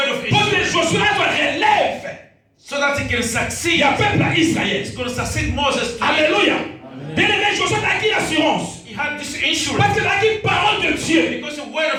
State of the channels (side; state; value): both; identical; correlation 1.00